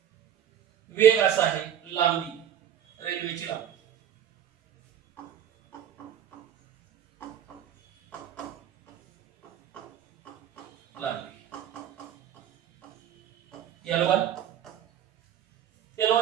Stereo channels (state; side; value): quieter; left; 9.7 dB